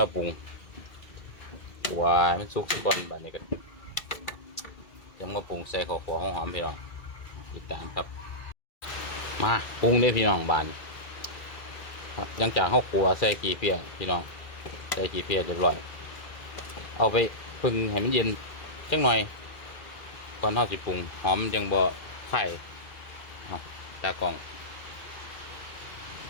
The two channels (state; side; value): late; right; 2.4 ms